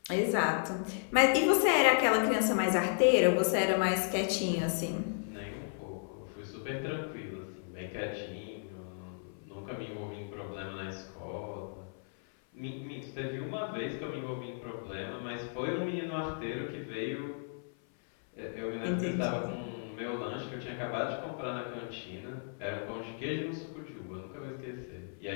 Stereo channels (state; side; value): silent; right; 55 dB below the other